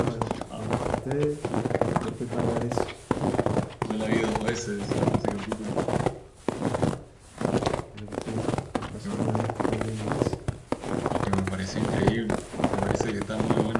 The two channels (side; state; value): both; identical; correlation 1.00